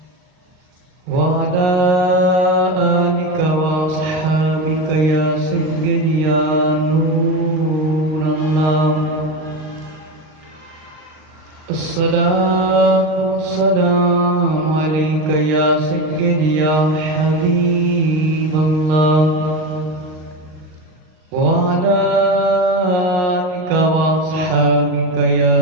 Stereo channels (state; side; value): late; left; 39 ms